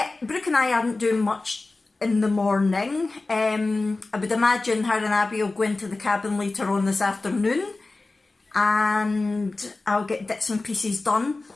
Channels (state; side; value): quieter; right; 3.3 dB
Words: Brooke and I aren't doing much in the morning. I would imagine her and Abby will go into the cabin later on this afternoon and I'll get bits and pieces done.